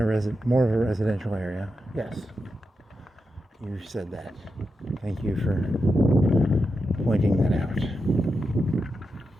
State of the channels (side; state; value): both; normal; correlation 0.88